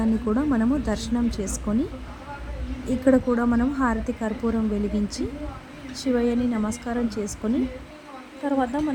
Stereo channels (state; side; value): identical; both; correlation 1.00